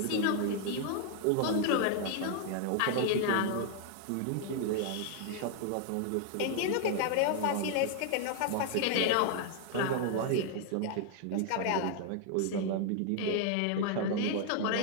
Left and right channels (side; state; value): both; different; correlation 0.00